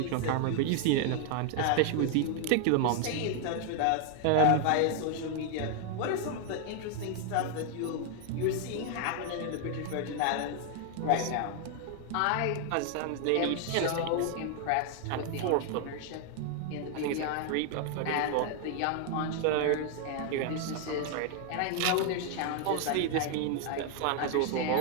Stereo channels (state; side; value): different; both; correlation 0.00